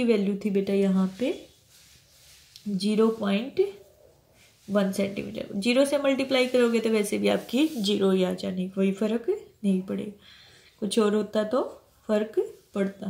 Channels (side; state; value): both; identical; correlation 1.00